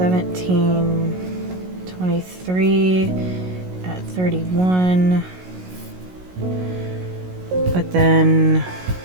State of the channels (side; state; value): left; late; 16 ms